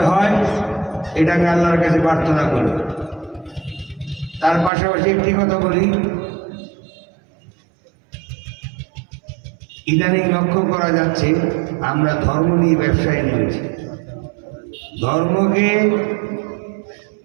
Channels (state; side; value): drops out; left; at 4.7 s